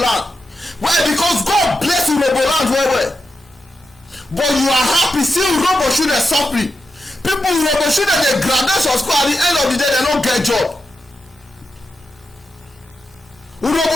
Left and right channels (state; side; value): normal; both; correlation 0.88